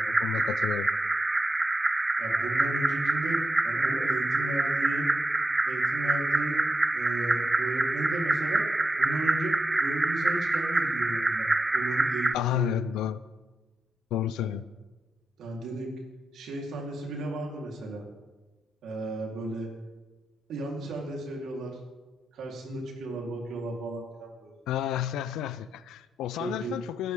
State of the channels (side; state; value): both; normal; correlation 0.87